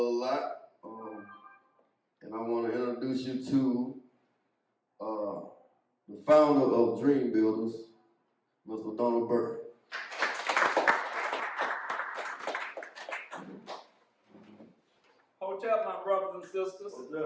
lot. And I want to introduce you to the founder of Dream Builders, Mr. Donald Burke. Hotel, my brothers and sisters.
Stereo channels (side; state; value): both; identical; correlation 1.00